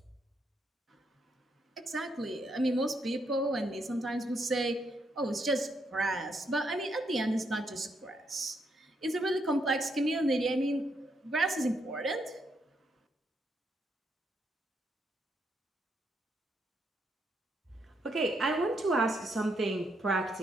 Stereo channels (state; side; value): normal; both; correlation 0.77